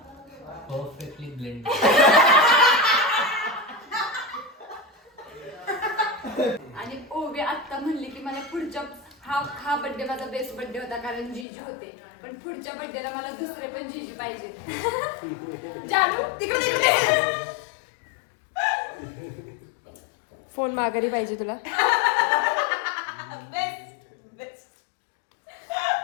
परफेक्टली ब्लेंड. आणि ओवी आत्ता म्हणली की मला पुढच्या हा बर्थडे माझा बेस्ट बर्थडे होता कारण जीजू होते, पण पुढच्या बर्थडेला मला दुसरे पण जीजू पाहिजे. जानू तिकडे तिकडे. फोन माघारी पाहिजे तुला.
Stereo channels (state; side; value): drops out; right; at 11.5 s